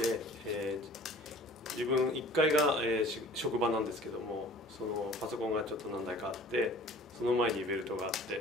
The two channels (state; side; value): normal; both; correlation 0.48